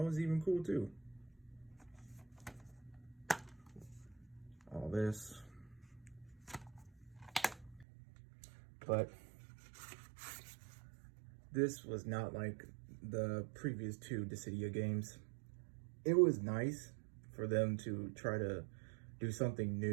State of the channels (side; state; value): left; drops out; at 7.9 s